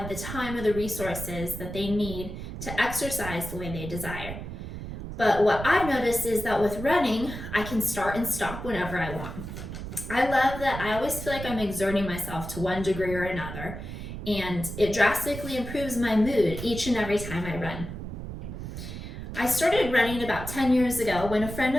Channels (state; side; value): noise; right; rumble, 8 dB below the sound